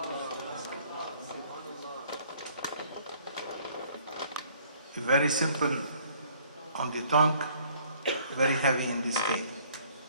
Very simple on the tongue, very heavy in the scale.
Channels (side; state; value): both; inverted; correlation -0.59